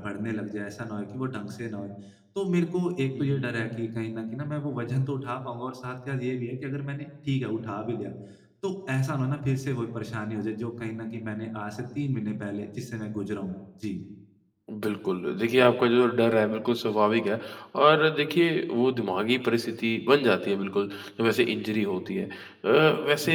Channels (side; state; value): both; identical; correlation 1.00